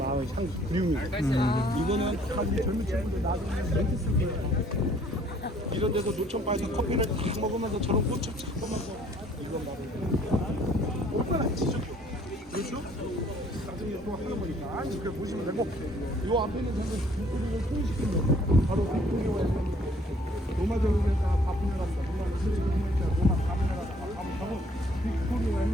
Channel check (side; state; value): both; normal; correlation 0.59